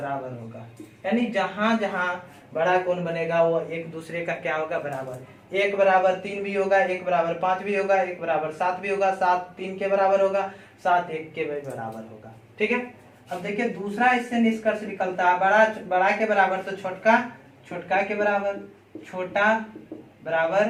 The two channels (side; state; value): both; identical; correlation 1.00